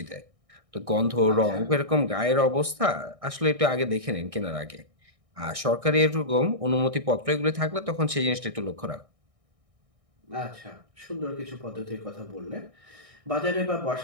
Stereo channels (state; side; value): late; left; 1.6 ms